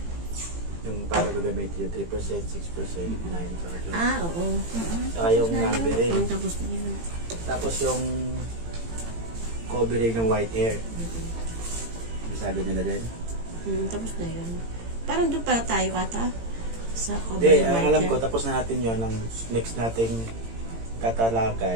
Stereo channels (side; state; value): left; late; 18 ms